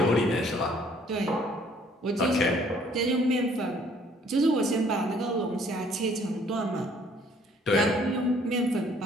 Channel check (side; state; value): both; normal; correlation 0.60